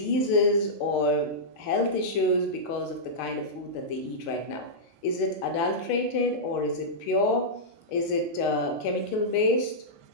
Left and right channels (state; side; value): late; right; 6.6 ms